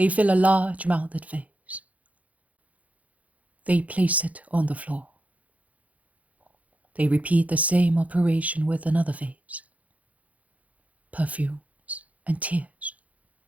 fill a large-mouthed vase. They place it on the floor. They repeat the same operation with another vase. Perfumes and tears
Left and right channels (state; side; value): late; left; 0.070 ms